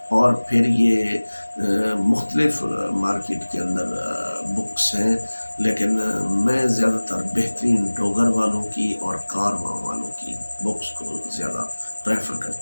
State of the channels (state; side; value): inverted; both; correlation -1.00